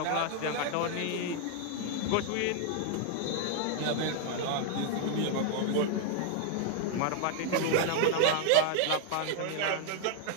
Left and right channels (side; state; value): both; different; correlation 0.00